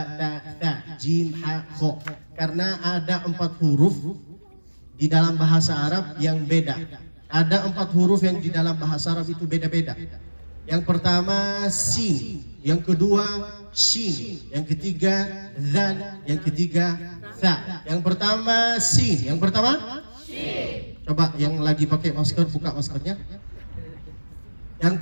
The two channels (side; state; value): both; inverted; correlation -1.00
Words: ta, jim, ha, kho. Karena ada 4 huruf di dalam bahasa Arab yang beda. Ada 4 huruf yang di dalam bahasa Arab itu beda-beda. Yang pertama sin, yang kedua shin, yang ketiga dzal, yang ketiga tha. Yang pertama sin, yang pertama shin. Coba yang lagi pakai masker buka maskernya. Yang